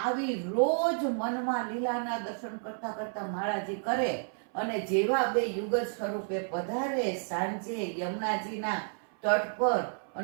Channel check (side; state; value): left; silent; 57 dB below the other